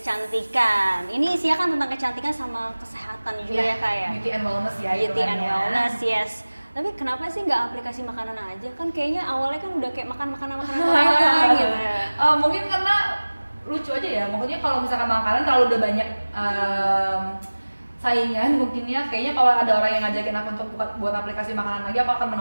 Ini isinya kan tentang kecantikan sama kesehatan juga ya Kak ya. Beauty and wellness ya. Beauty and wellness, yes. Tapi kenapa sih nggak aplikasi makanan aja? Kan kayaknya awalnya kan udah kayak makan makanan Korea gitu. Mungkin karena lucu aja ya. Maksudnya kalau misalkan makanan terlalu udah banyak saingan, mungkinnya kayaknya kalau ada orang yang ngajakin aku untuk buat aplikasi makanan lagi, aku akan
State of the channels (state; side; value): inverted; both; correlation -1.00